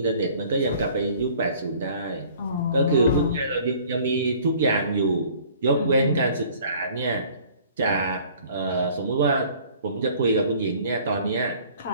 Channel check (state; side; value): inverted; both; correlation -0.53